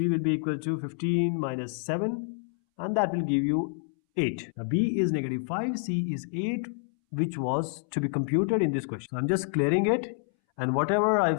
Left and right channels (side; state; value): right; silent; 59 dB below the other